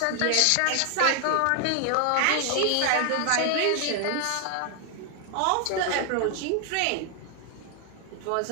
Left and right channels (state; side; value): different; both; correlation 0.00